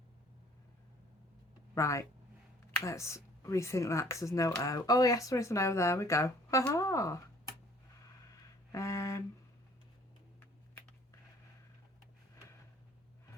Right, let's rethink that because there's no O. Oh yes, there is an O. There we go. Haha.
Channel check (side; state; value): both; normal; correlation 0.55